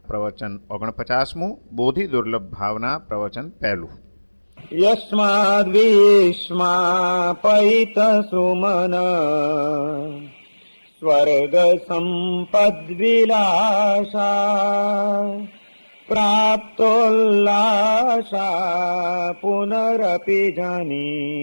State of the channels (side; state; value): both; inverted; correlation -1.00